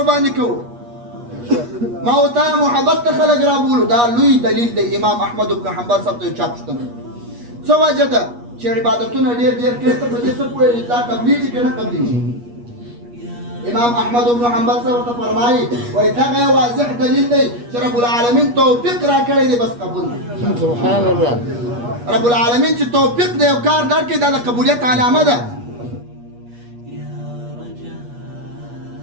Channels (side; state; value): left; late; 8.4 ms